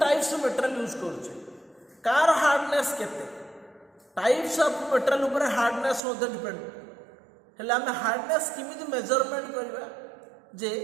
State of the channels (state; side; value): drops out; left; at 6.0 s